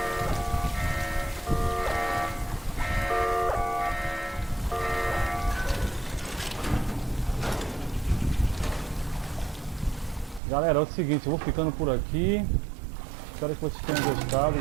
Galera, é o seguinte, eu vou ficando por aqui. Espero que vocês tenham gostado,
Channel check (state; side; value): drops out; left; at 10.4 s